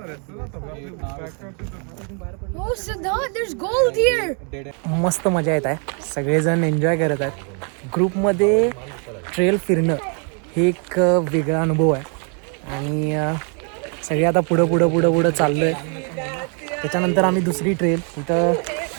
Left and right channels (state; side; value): quieter; left; 39.4 dB